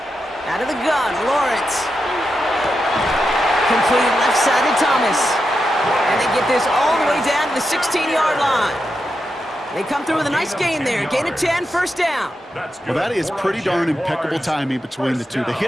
Out of the gun, Lawrence. Complete left side to Thomas. And they get this all the way down to the 16-yard line. They come through with a nice gain there. Gain of 10, first down. Well, that is pretty darn impeccable timing between the two. To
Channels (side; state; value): both; normal; correlation 0.87